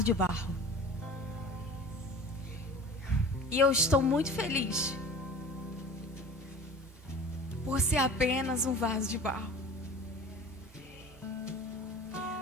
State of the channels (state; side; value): normal; both; correlation 0.40